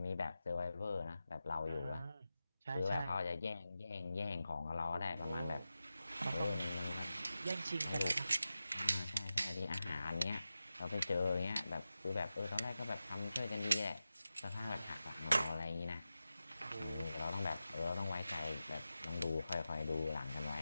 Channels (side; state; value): both; inverted; correlation -0.93